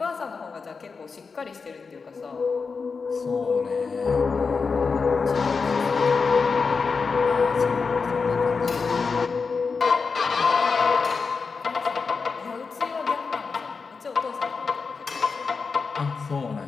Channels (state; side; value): quieter; right; 4.9 dB